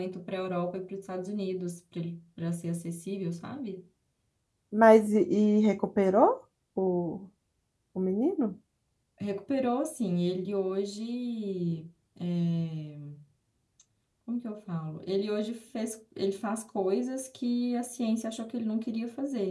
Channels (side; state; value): both; identical; correlation 1.00